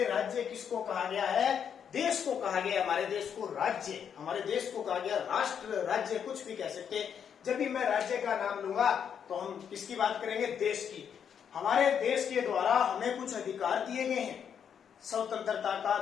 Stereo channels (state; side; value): quieter; right; 7.9 dB